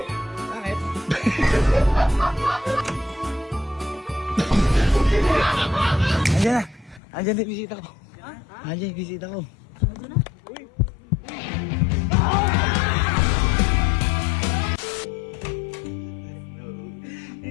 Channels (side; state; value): right; drops out; at 7.0 s